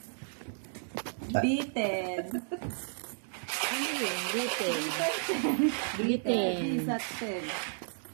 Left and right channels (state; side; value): silent; left; digital silence